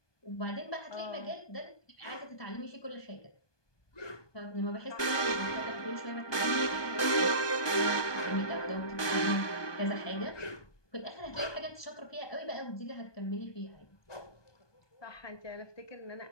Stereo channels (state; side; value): late; right; 1.2 ms